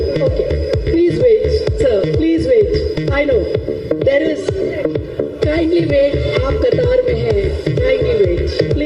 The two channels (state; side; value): identical; both; correlation 1.00